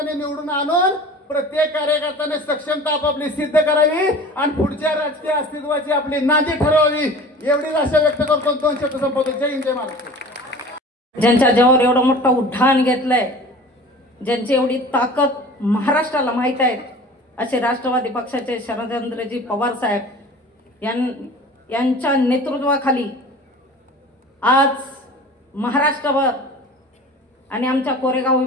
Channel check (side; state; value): both; normal; correlation 0.41